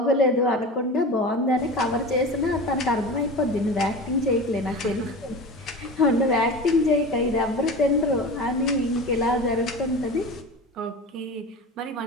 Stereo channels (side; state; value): both; normal; correlation 0.32